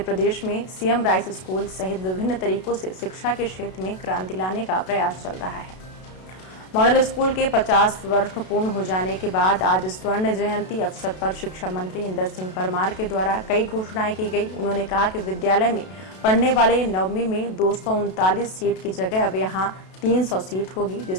में सीएम राइस स्कूल सहित विभिन्न तरीकों से शिक्षा के क्षेत्र में क्रांति लाने का प्रयास चल रहा है। मॉडल स्कूल के 50 वर्ष पूर्ण हो जाने के बाद आज स्वर्ण जयंती अवसर पर शिक्षा मंत्री इंदर सिंह परमार के द्वारा कई घोषणाएं की गई। उन्होंने कहा कि विद्यालय में पढ़ने वाले नववीं में 239 सीट की जगह अब यहां 300 सीट होगी,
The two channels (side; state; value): right; late; 32 ms